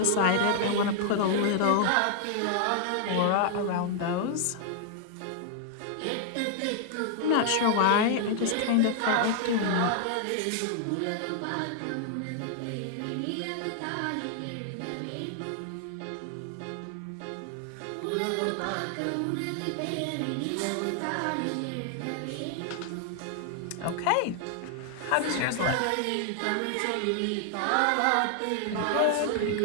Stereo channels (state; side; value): different; both; correlation 0.00